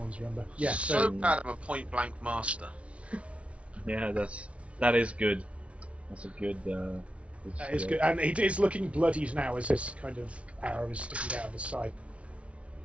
Remember? Yeah. So bad I'm a point blank master. Yeah, that is good. That's a good. That is good, and it is looking bloodied now as this kind of arrow is sticking out of his side.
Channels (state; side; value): late; left; 0.062 ms